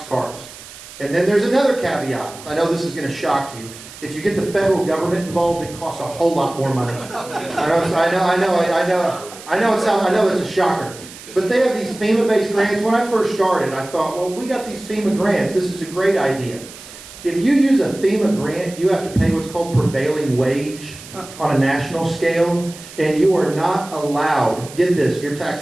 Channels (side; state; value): right; noise; hiss, 17 dB below the sound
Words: cars. And then there's another caveat. I know this is going to shock you. If you get the federal government involved, it costs a whole lot more money. I know it's a shocker. But they have these FEMA-based grants. When I first started, I thought, well, we got these FEMA grants. This is a great idea. If you use a FEMA grant, you have to pay what's called prevailing wage on a national scale, and you are not allowed, get this, your